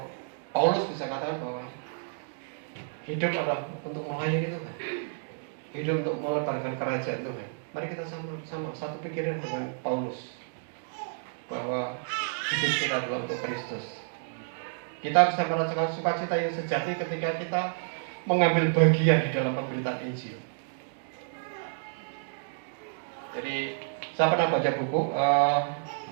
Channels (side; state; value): left; silent; digital silence